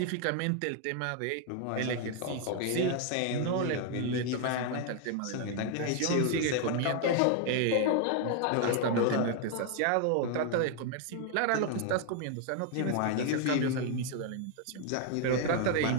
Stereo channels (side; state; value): both; different; correlation 0.00